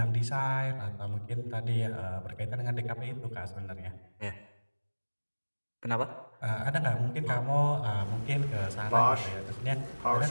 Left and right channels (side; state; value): both; inverted; correlation -1.00